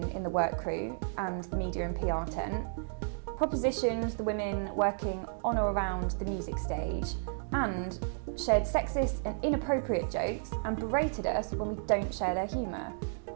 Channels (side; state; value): left; silent; digital silence